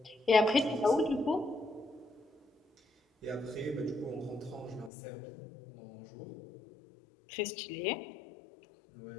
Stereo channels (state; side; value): drops out; right; at 4.9 s